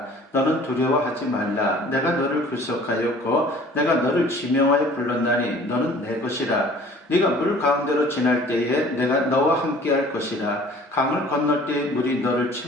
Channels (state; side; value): normal; both; correlation 0.50